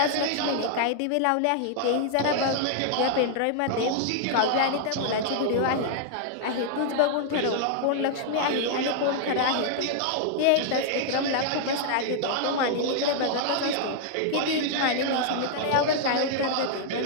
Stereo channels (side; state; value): both; different; correlation -0.01